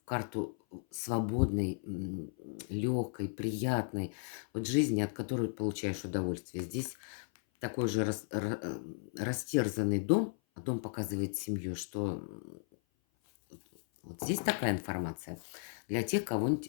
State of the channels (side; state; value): right; silent; 54 dB below the other